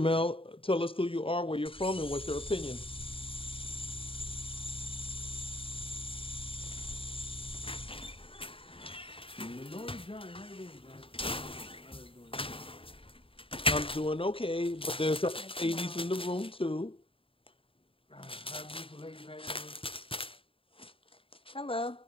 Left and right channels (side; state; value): right; late; 0.26 ms